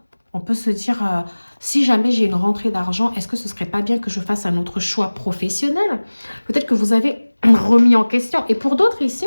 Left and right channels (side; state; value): both; inverted; correlation -1.00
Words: On peut se dire, si jamais j'ai une rentrée d'argent, est-ce que ce serait pas bien que je fasse un autre choix professionnel? Peut-être que vous avez remis en question. Et pour d'autres ici,